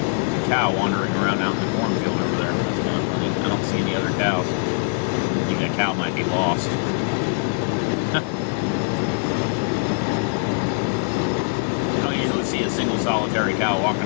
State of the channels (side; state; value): right; silent; 60 dB below the other